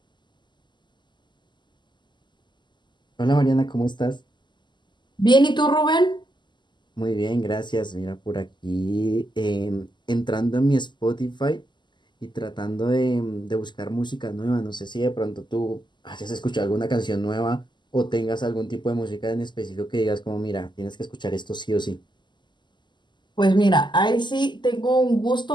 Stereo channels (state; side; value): late; right; 0.22 ms